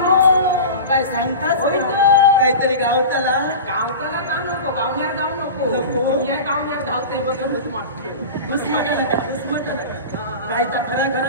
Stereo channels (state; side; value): inverted; both; correlation -0.31